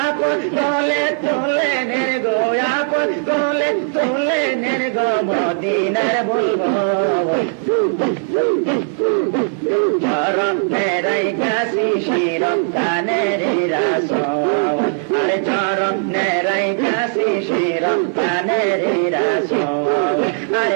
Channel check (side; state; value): left; silent; digital silence